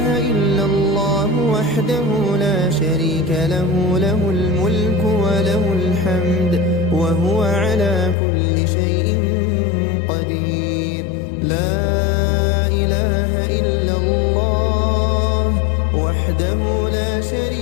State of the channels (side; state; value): right; drops out; at 8.2 s